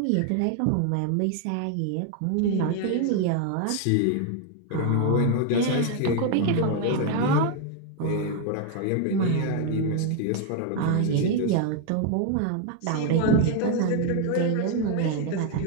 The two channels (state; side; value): different; both; correlation 0.01